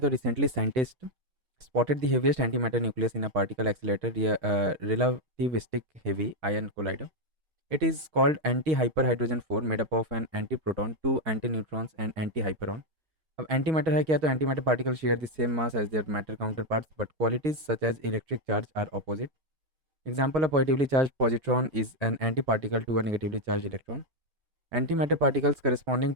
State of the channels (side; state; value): left; late; 6.4 ms